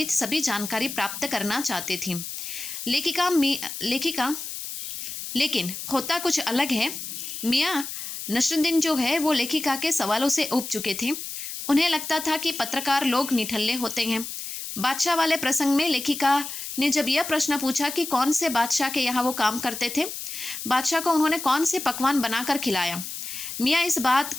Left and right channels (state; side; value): noise; left; hiss, 7 dB below the sound